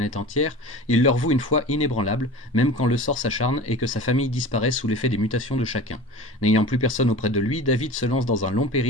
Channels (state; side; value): normal; both; correlation 0.36